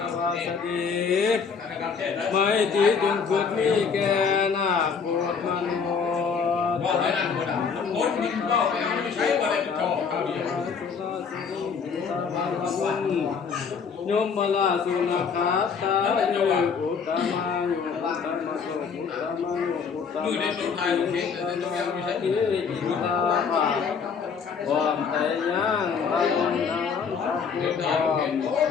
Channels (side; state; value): right; quieter; 5.9 dB